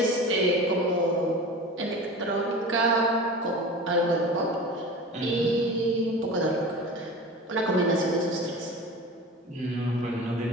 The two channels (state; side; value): normal; both; correlation 0.34